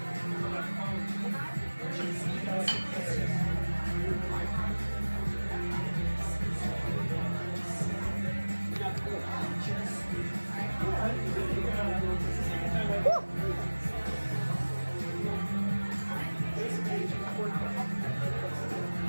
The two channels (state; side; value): inverted; both; correlation -1.00